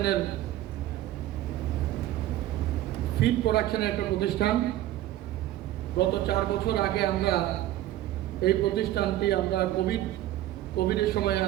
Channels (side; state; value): left; quieter; 14.1 dB